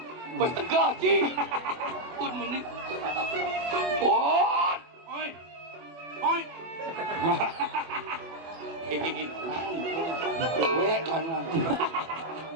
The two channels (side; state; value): left; late; 24 ms